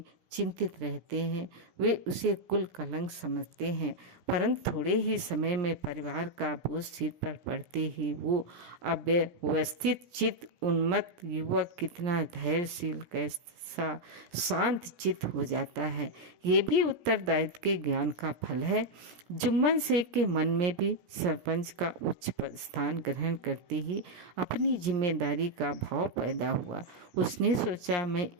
चिंतित रहते हैं। वे उसे कुल कलंक समझते हैं, परंतु थोड़े ही समय में परिवार का बोझ सिर पर पड़ते ही वो अव्यवस्थित चित्त उन्मत्त युवक कितना धैर्यशील, कैसा शांत चित्त हो जाता है। ये भी उत्तरदायित्व के ज्ञान का फल है। जुम्मन शेख के मन में भी सरपंच का उच्च स्थान ग्रहण करते ही अपनी जिम्मेदारी का भाव पैदा हुआ। उसने सोचा, मैं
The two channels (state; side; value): late; left; 16 ms